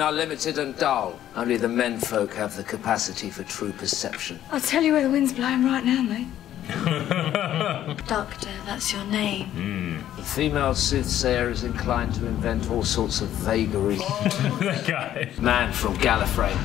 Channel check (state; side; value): quieter; right; 11.8 dB